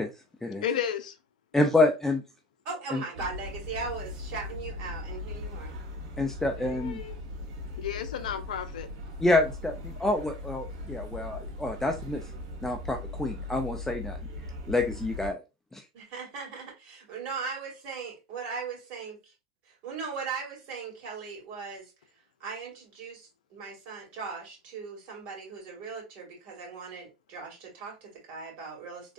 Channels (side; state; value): both; normal; correlation 0.49